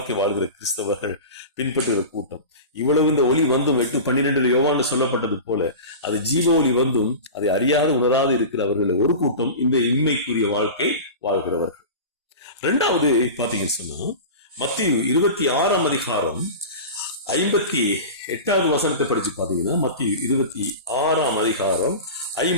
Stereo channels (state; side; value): inverted; both; correlation -0.30